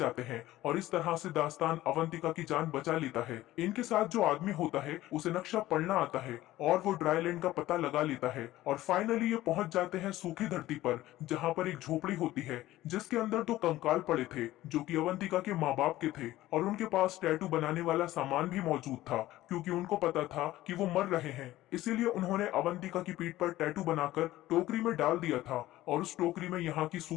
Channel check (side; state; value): right; quieter; 15.8 dB